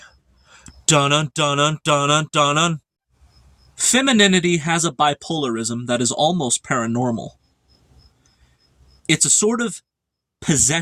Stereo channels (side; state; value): both; identical; correlation 1.00